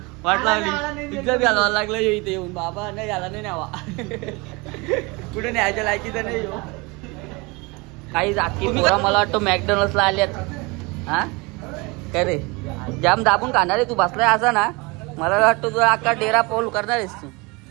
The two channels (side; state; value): left; quieter; 26.3 dB